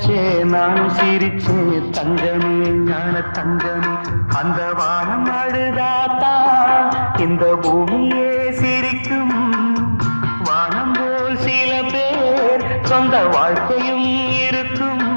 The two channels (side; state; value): both; inverted; correlation -1.00